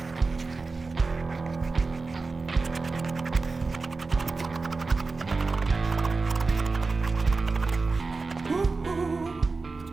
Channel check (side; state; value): left; quieter; 3.9 dB